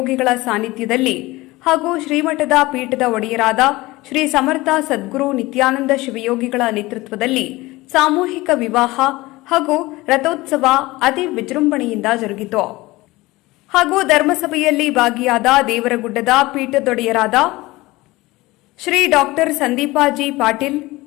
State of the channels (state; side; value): quieter; right; 20.2 dB